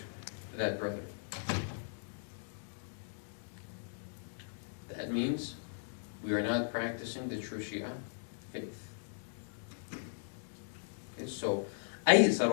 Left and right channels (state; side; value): silent; right; digital silence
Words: to that brother. That means we are not practicing the true Shia faith. Okay, so